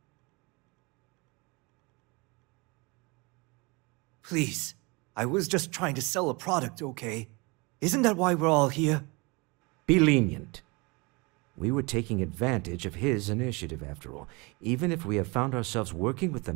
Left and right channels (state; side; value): quieter; left; 27.4 dB